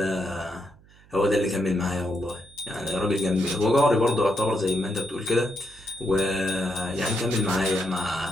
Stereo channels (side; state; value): right; noise; hum, 27 dB below the sound